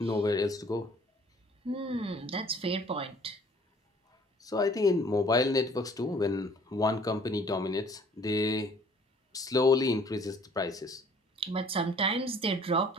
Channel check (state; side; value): normal; both; correlation 0.56